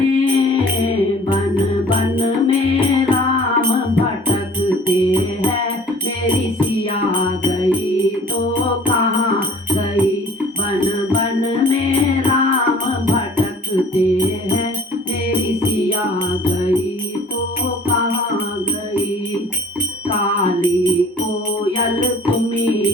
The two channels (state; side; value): normal; both; correlation 0.50